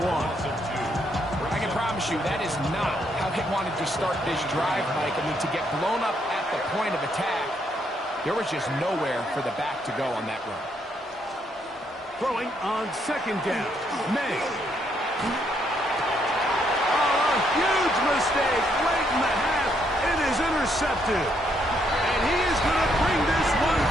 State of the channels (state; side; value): normal; both; correlation 0.73